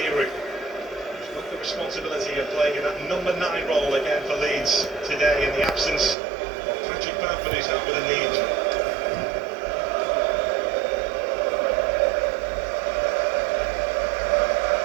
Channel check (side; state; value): left; drops out; at 6.2 s